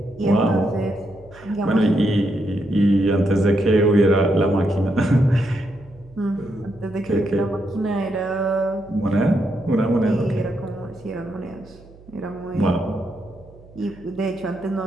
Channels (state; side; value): noise; right; hum, 23 dB below the sound